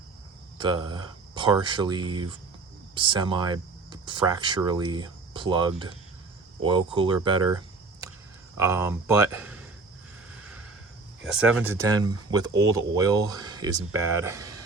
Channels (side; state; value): left; quieter; 3.8 dB